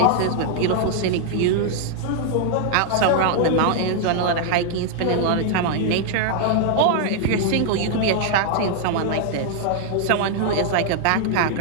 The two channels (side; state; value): both; different; correlation -0.01